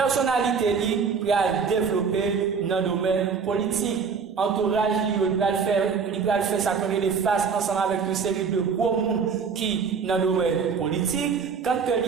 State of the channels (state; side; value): quieter; left; 5.8 dB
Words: li pour développer dans le domaine politique. Entourage il va faire ça comme les face ensemble avec une série de gros monde qui dans le domaine politique. Quand